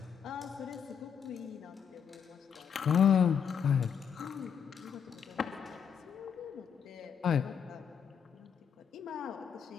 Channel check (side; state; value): right; quieter; 7.5 dB